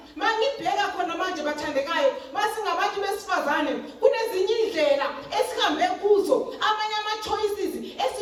Mangibheka khona manje bathandekayo masingabantu besifazane kunezinye indlela esihambe kuzo, amanye ama-choices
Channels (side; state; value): both; identical; correlation 1.00